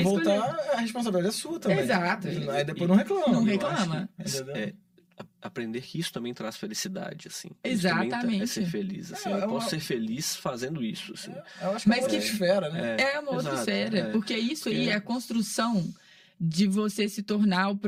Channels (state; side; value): identical; both; correlation 1.00